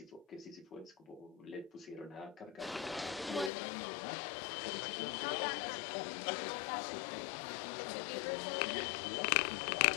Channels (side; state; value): right; drops out; at 3.5 s